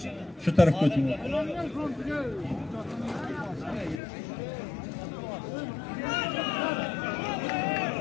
Shu tarafga o'ting.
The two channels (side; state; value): right; drops out; at 4.0 s